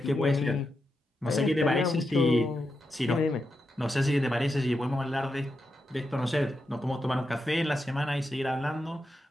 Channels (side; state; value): both; normal; correlation 0.86